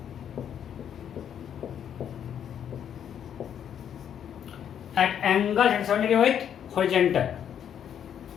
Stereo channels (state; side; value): quieter; right; 9.0 dB